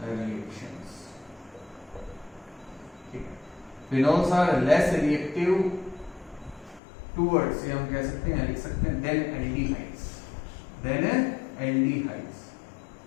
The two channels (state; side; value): drops out; right; at 6.8 s